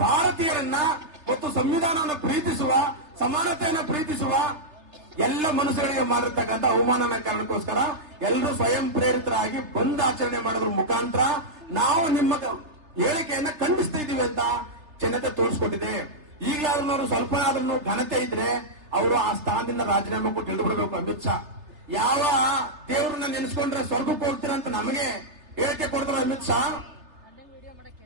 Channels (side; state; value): left; late; 3.3 ms